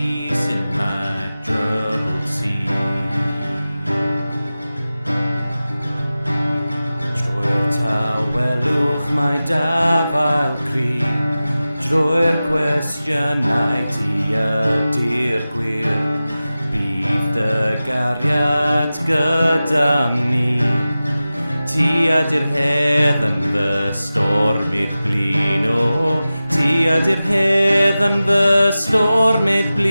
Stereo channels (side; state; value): both; inverted; correlation -0.95